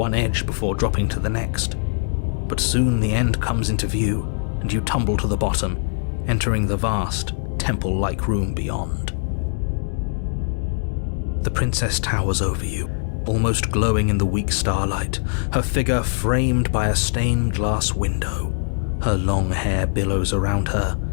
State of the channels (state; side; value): silent; right; digital silence